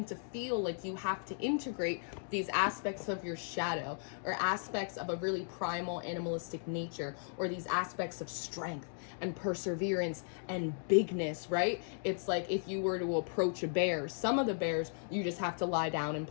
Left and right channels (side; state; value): right; silent; digital silence